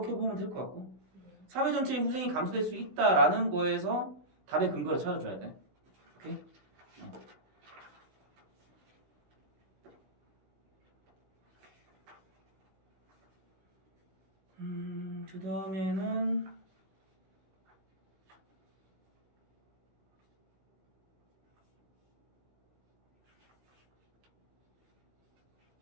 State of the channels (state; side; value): late; left; 16 ms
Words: 보면 될 것 같고, 사회 전체의 후생이 감소될 수 있다라는 거에서 답의 근거를 찾아줘야 돼. 오케이? 그 다음에는